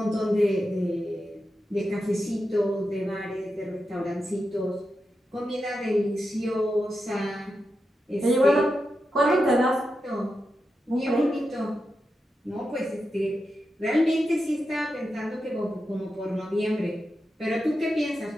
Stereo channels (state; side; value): normal; both; correlation 0.89